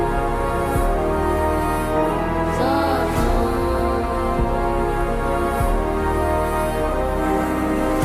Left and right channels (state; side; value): identical; both; correlation 1.00